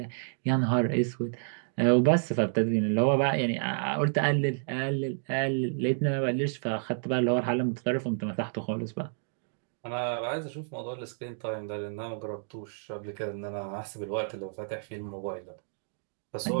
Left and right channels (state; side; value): silent; left; digital silence